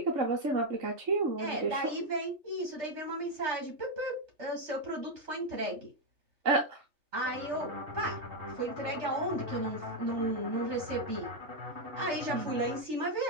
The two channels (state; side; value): late; left; 3.3 ms